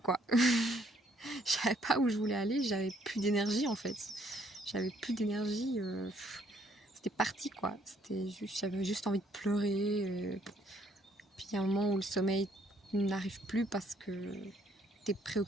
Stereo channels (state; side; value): normal; both; correlation 0.66